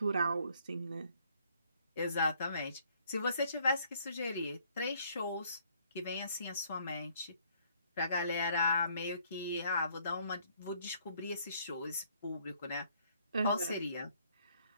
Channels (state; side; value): inverted; both; correlation -0.65